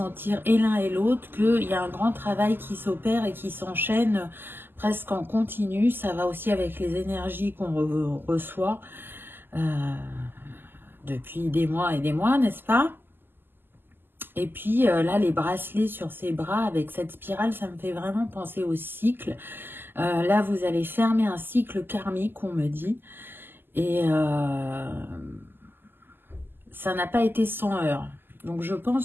et l'un et l'autre qu'il y a un grand travail qui s'opère et qui s'enchaîne presque en continu. Ça va aussi avec les énergies qu'on reçoit depuis des mois et des mois, n'est-ce pas? Et puis là, les bracelets sur ses bras avec cette spirale, ça me fait vraiment penser au cycle. Là, vous allez fermer un cycle karmique, on me dit. Et ça n'a pas été sans heurts. Donc, je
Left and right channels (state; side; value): late; left; 0.096 ms